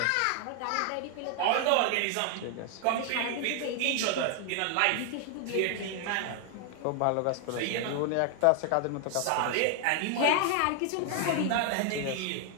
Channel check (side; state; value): both; different; correlation 0.00